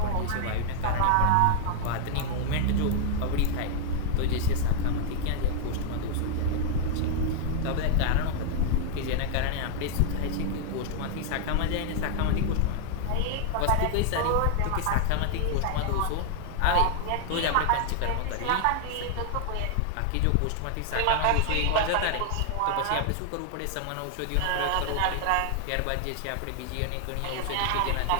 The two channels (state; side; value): different; both; correlation -0.01